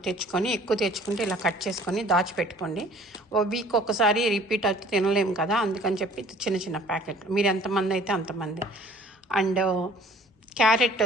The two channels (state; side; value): normal; both; correlation 0.52